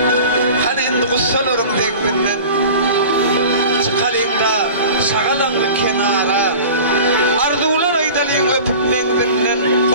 Hani endi kussalarım dekbinden. Çıkalıyla şağalanlı kenara. Arzulan aydalıyın öpüp mengdinden.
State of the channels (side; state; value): both; inverted; correlation -0.38